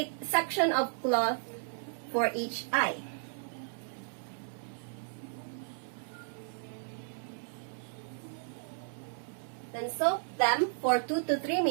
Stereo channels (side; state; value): left; silent; 55 dB below the other